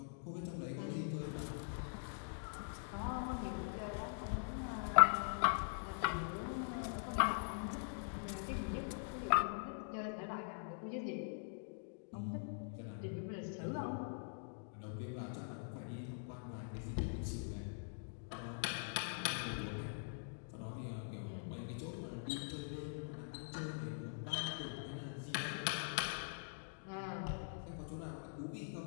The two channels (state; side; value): silent; right; digital silence